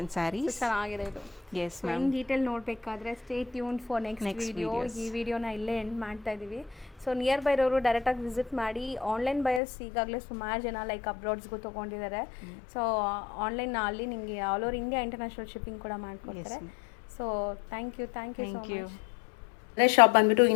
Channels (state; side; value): drops out; right; at 9.6 s